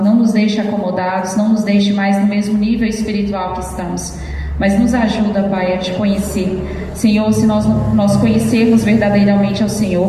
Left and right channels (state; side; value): identical; both; correlation 1.00